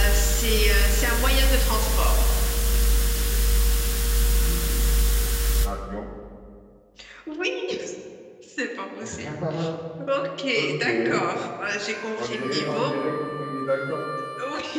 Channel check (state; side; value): identical; both; correlation 1.00